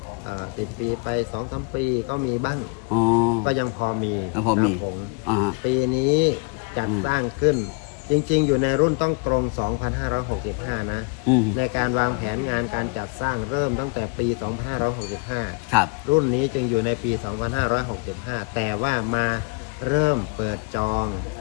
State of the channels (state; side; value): quieter; right; 33.0 dB